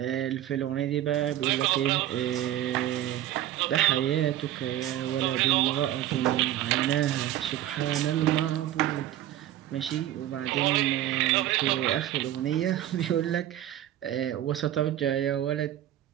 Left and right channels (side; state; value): left; quieter; 12.7 dB